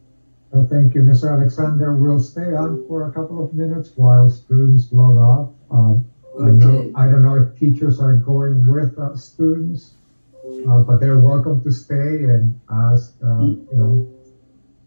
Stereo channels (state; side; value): inverted; both; correlation -1.00